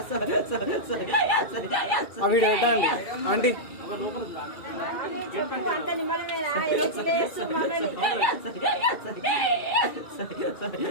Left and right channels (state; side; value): late; right; 2.3 ms